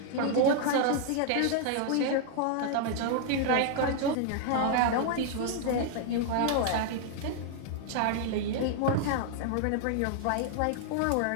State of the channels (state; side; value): different; both; correlation 0.00